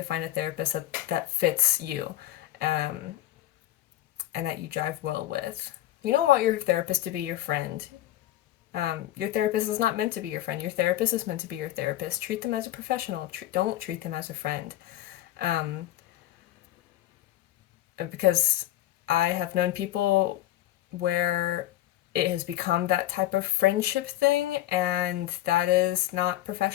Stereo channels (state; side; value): quieter; right; 14.3 dB